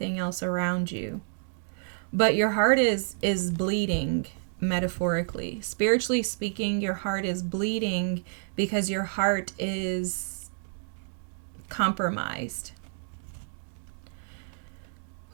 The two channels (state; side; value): silent; left; digital silence